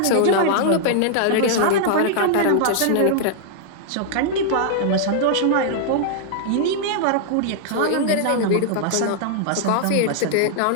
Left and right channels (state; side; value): different; both; correlation -0.01